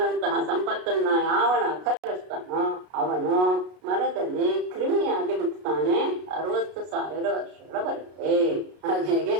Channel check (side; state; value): left; late; 33 ms